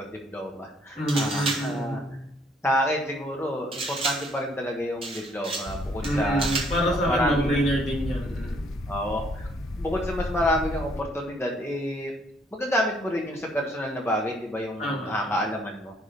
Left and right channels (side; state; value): both; normal; correlation 0.65